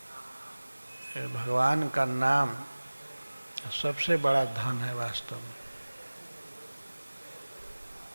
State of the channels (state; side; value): inverted; both; correlation -1.00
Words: ये भगवान का नाम सबसे बड़ा धन है वास्तव में।